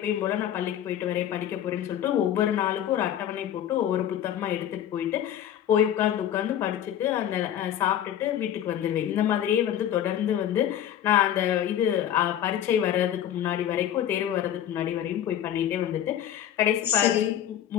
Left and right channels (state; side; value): quieter; right; 10.7 dB